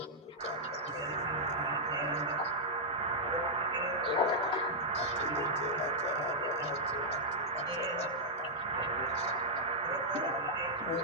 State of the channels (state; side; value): normal; both; correlation -0.07